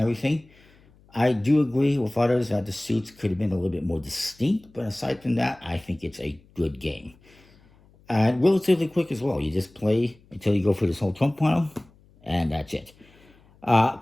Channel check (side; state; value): left; noise; hum, 29 dB below the sound